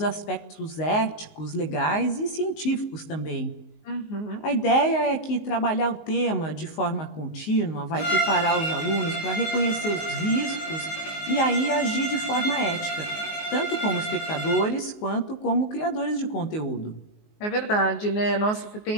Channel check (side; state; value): right; late; 19 ms